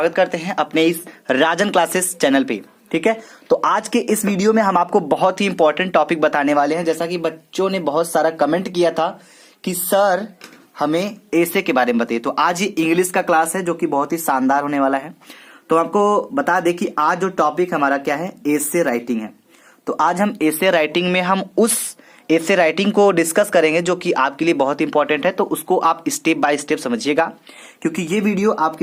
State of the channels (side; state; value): both; identical; correlation 1.00